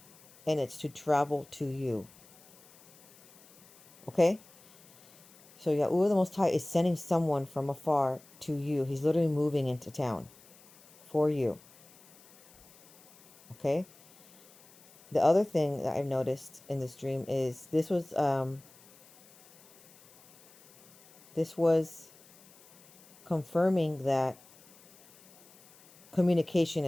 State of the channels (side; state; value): left; noise; hiss, 26 dB below the sound